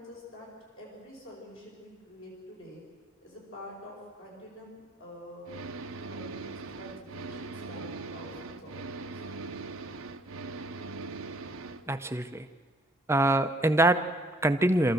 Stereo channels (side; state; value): both; normal; correlation 0.62